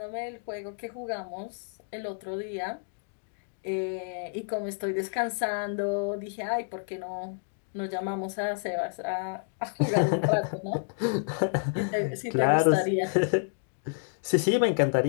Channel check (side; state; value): right; silent; digital silence